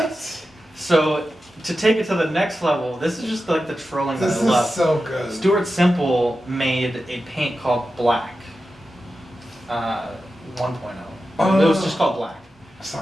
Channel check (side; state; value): both; normal; correlation 0.92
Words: So to take it to the next level, this is just like the trolling that This I is love. so good. Stuart Semple made a paint called Black 1.0. It was just called Black.